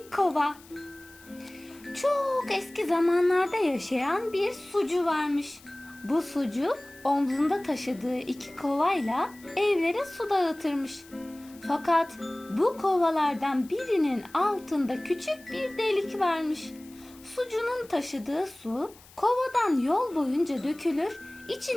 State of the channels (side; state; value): left; noise; hiss, 24 dB below the sound